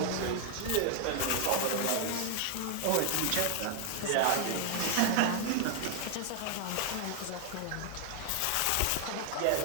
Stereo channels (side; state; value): both; different; correlation 0.00